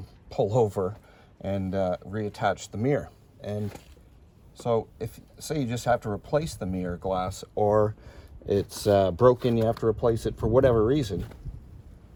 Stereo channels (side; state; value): both; identical; correlation 1.00